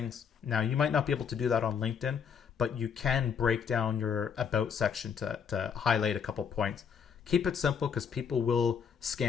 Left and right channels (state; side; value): quieter; right; 7.0 dB